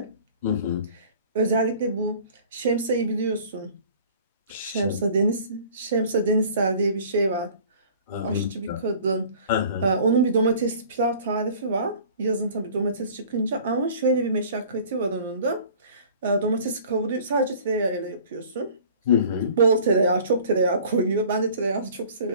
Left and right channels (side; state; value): both; inverted; correlation -0.48